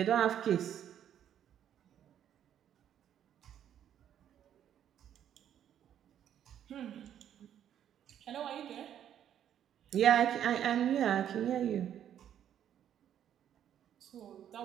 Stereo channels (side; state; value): left; quieter; 10.1 dB